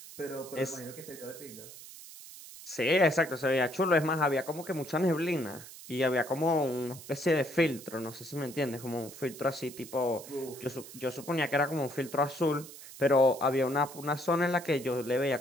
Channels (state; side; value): noise; right; hiss, 15 dB below the sound